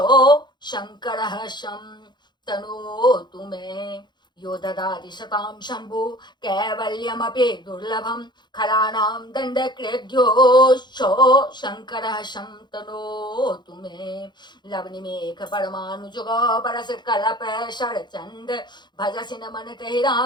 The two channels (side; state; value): right; late; 0.21 ms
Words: शङ्करः शं तनोतु मे यो ददाति शतां शम्भो कैवल्यमपि दुर्लभं खलानां दण्डकृद्योशो शङ्करः शं तनोतु मे लवनिमेघ परमानुजुग परस कलप शरचंद भजसिन मन तहि